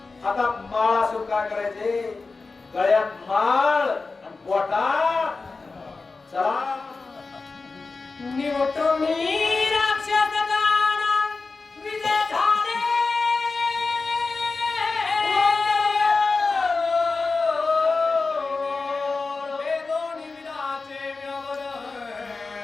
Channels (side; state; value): right; quieter; 4.0 dB